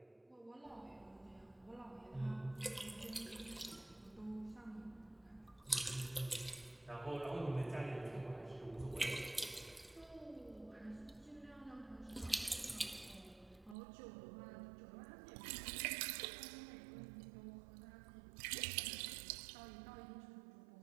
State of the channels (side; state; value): left; drops out; at 13.8 s